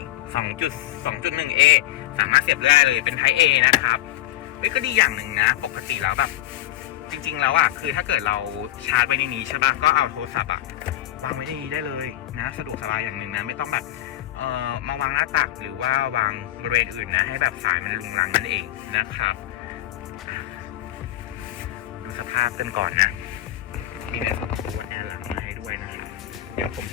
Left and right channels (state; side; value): quieter; right; 14.3 dB